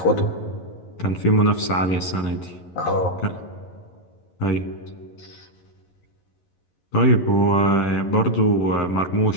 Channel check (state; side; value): late; right; 11 ms